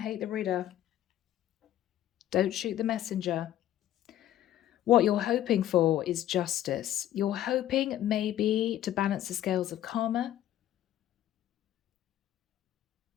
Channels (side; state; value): right; quieter; 12.5 dB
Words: the reader. Don't shoot the messenger. What you're hoping for is justice. You're hoping maybe to balance the scales of karma.